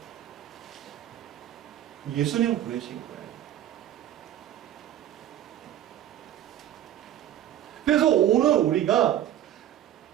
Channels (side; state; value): left; quieter; 11.6 dB